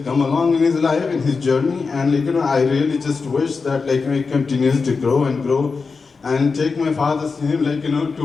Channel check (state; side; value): quieter; right; 4.7 dB